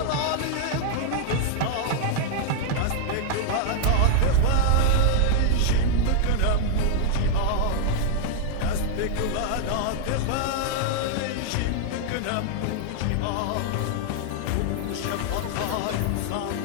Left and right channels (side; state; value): both; different; correlation -0.01